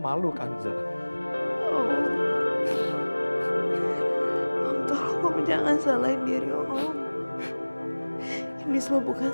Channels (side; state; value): both; inverted; correlation -1.00